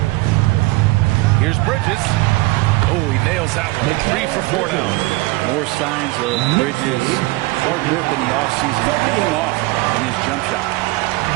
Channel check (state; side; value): quieter; left; 21.8 dB